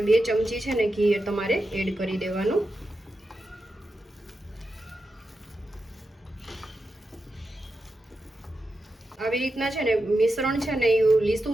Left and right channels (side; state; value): both; normal; correlation 0.89